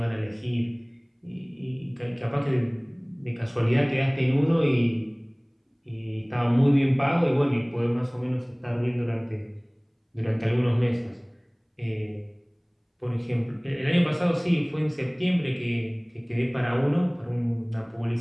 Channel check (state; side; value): identical; both; correlation 1.00